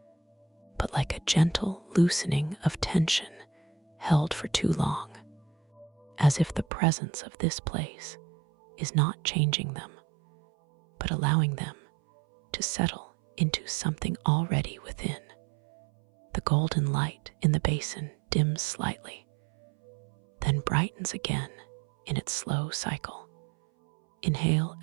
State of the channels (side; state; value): left; drops out; at 6.7 s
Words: but like a gentle loosening of tension held for too long, as if the presence of this place is not changing them, but allowing them to settle into something already within. The golden light in the basin dims slightly, then brightens again in its slow cycle. Inhale,